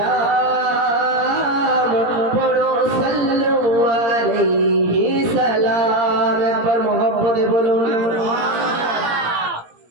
পড়ো সাল্লু আলাইহি সালাম। একবার মোহব্বতে বলুন।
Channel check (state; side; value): late; left; 17 ms